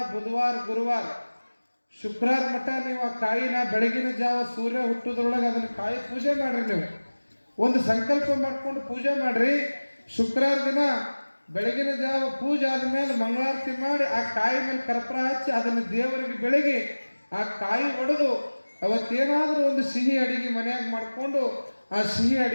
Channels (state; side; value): inverted; both; correlation -1.00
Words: ಬುಧವಾರ, ಗುರುವಾರ, ಶುಕ್ರವಾರ ಮಟ್ಟ ನೀವು ಆ ಕಾಯಿನ ಬೆಳಗಿನ ಜಾವ ಸೂರ್ಯ ಹುಟ್ಟೋದ್ರೊಳಗೆ ಅದನ್ನ ಕಾಯಿ ಪೂಜೆ ಮಾಡ್ರಿ. ನೀವು ಒಂದು ಸಂಕಲ್ಪ ಮಾಡ್ಕೊಂಡು ಪೂಜೆ ಮಾಡ್ರಿ. ಶುಕ್ರವಾರ ದಿನ ಬೆಳಗಿನ ಜಾವ ಪೂಜೆ ಆದ್ಮೇಲೆ ಮಂಗಳಾರತಿ ಮಾಡಿ ಆ ಕಾಯಿ ಮೇಲೆ ಕರ್ಪೂರ ಹಚ್ಚಿ ಅದನ್ನು ದೇವರಿಗೆ ಬೆಳಗಿ ಆ ಕಾಯಿ ಒಡೆದು ಅವತ್ತೇನಾದ್ರೂ ಒಂದು ಸಿಹಿ ಅಡಿಗೆ ಮನೆಯಾಗ ಮಾಡಿಕೊಂಡು ಆ ಸಿಹಿ